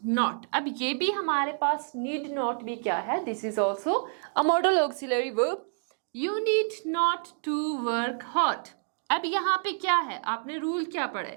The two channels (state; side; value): silent; left; digital silence